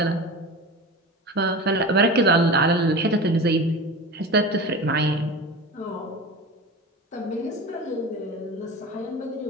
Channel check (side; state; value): both; normal; correlation 0.31